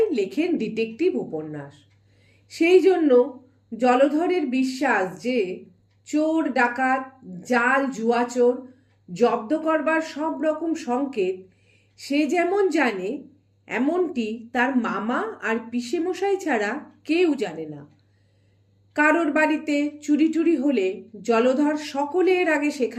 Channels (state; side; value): identical; both; correlation 1.00